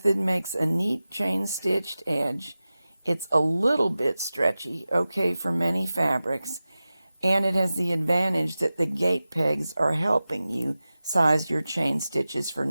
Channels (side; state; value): both; inverted; correlation -0.95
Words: makes a neat chain stitched edge. It's a little bit stretchy, okay for many fabrics, and it has the advantage that the gate pegs are helping you size your chain stitches for